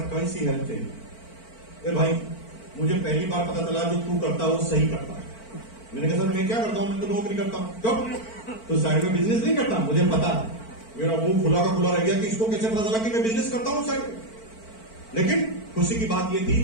कौन सी हेल्प चाहिए? ए भाई मुझे पहली बार पता चला जो तू करता है वो सही करता है। मैंने कहा सर मैं क्या करता हूं, मैं तो नौकरी करता हूं। क्यों? तो साइड में बिजनेस नहीं करता? मुझे पता है। मेरा मुंह खुला का खुला रह गया कि इसको कैसे पता चला कि मैं बिजनेस करता हूं साइड में। लेकिन खुशी की बात यह थी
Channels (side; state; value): right; late; 4.5 ms